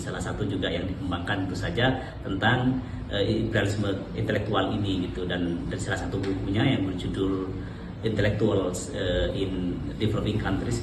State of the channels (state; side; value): identical; both; correlation 1.00